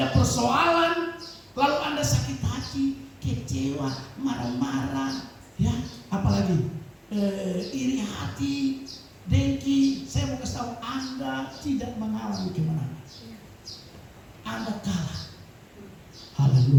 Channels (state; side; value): identical; both; correlation 1.00